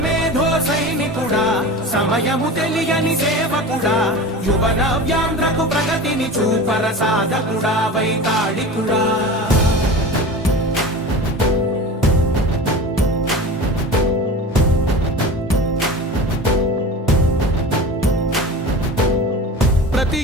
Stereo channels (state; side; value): normal; both; correlation 0.33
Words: మేధో సైనికుడా సమయము తెలియని సేవకుడా యువ నవ్యాంధ్రకు ప్రగతిని చూపర సాధకుడా వైతాళికుడా ప్రతి